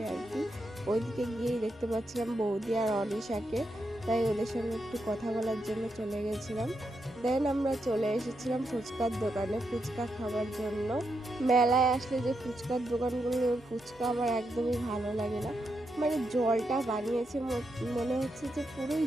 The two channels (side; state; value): both; normal; correlation 0.83